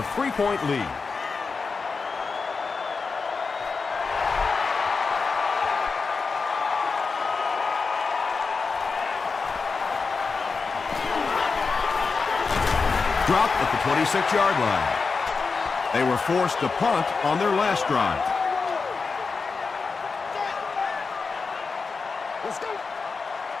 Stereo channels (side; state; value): right; quieter; 4.7 dB